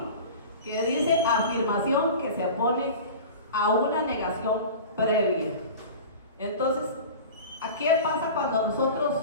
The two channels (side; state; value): both; inverted; correlation -0.35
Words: que dice afirmación que se opone a una negación previa. Entonces, ¿qué pasa cuando nosotros,